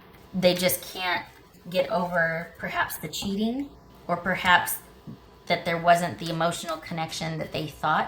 they just can't get over perhaps the cheating, or perhaps that there wasn't the emotional connection that they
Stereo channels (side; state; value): both; identical; correlation 1.00